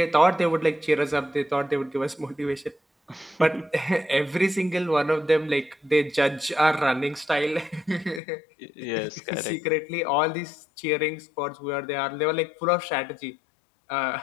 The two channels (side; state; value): right; drops out; at 8.2 s